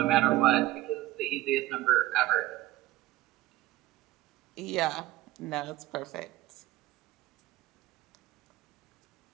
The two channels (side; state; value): left; quieter; 16.8 dB